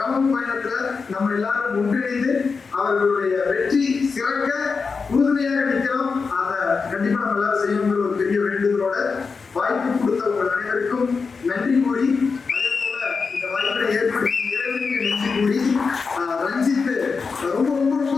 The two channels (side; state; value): right; quieter; 4.9 dB